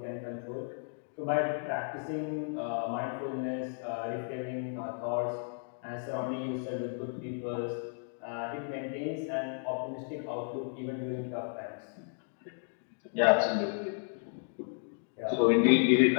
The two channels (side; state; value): right; silent; digital silence